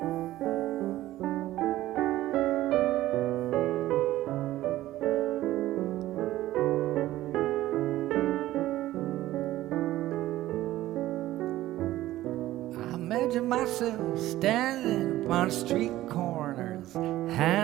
Imagine myself standing upon street corners,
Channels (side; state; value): left; quieter; 15.2 dB